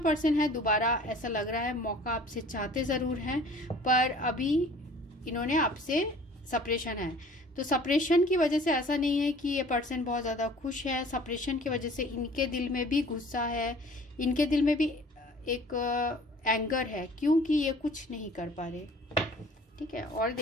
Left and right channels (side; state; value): both; normal; correlation 0.49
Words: है दोबारा ऐसा लग रहा है मौका आपसे चाहते ज़रूर हैं, पर अभी इन्होंने आपसे सेपरेशन है। तो सेपरेशन की वजह से ऐसा नहीं है कि ये पर्सन बहुत ज़्यादा खुश है, सेपरेशन की वजह से इनके दिल में भी गुस्सा है, इनके दिल में भी एक एंगर है, क्योंकि ये कुछ नहीं कर पा रहे। ठीक है, और